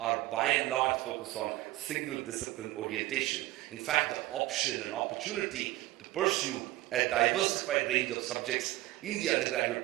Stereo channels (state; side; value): quieter; left; 17.7 dB